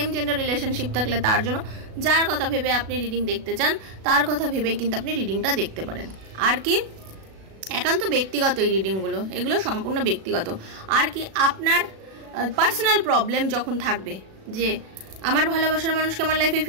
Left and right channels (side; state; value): left; late; 37 ms